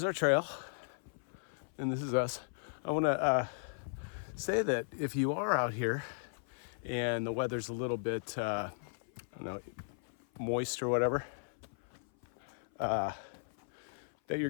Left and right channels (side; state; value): right; silent; 54 dB below the other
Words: our trail, and this is us. I want to say that if you are out here and the weather's a little bit, I don't know, moist or whatever, that you're